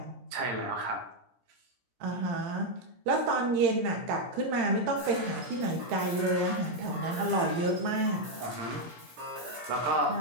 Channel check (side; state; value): left; late; 17 ms